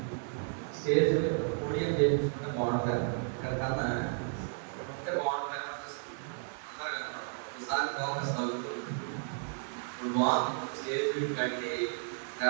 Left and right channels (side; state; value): left; silent; 56 dB below the other